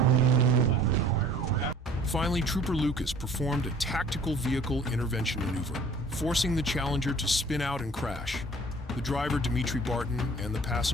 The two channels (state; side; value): normal; both; correlation 0.51